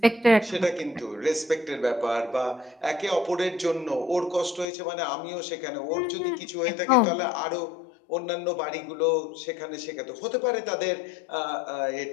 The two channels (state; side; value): drops out; right; at 4.7 s